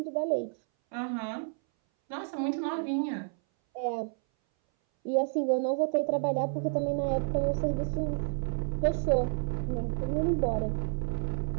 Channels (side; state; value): left; silent; 58 dB below the other